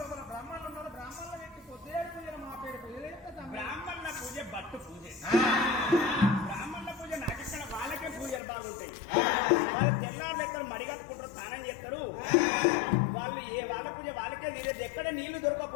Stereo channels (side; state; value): right; drops out; at 8.4 s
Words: బ్రాహ్మణులు ఉన్నారు బ్రాహ్మణుల వ్యక్తి పొద్దులేడు పూజ మా పేరు పూజ బ్రాహ్మణుల పూజ బట్టు పూజ బ్రాహ్మణుల పూజ నాకిక్కడ వాళ్ళకే పూజలు బాగుంటాయి వాళ్ళు తెల్లారు ఎక్కడ మడిగట్టుకుంటారు స్నానం చేస్తారు వాళ్ళు వాళ్ళ పూజ వాళ్ళకే నీళ్ళు ఎక్కడ నీళ్లు